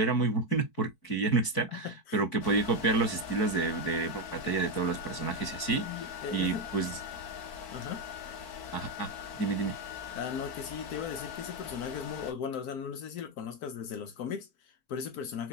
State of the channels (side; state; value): right; late; 4.6 ms